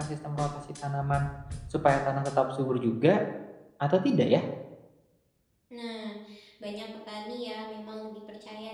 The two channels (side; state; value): both; identical; correlation 1.00